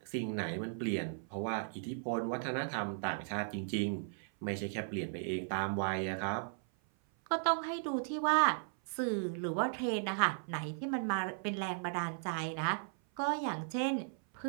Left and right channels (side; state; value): left; silent; 54 dB below the other